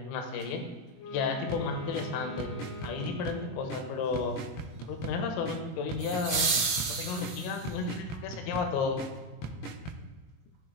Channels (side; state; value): right; late; 22 ms